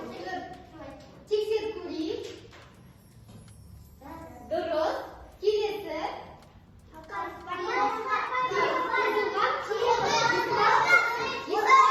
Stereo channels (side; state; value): both; identical; correlation 1.00